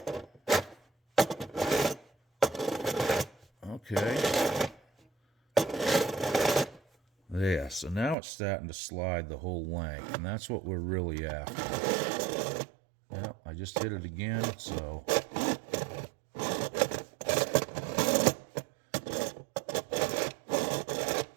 Okay. There, so now it's starting to slide the whole length, and that's what we're really after. Yep, I just hit it again, so.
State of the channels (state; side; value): drops out; left; at 8.2 s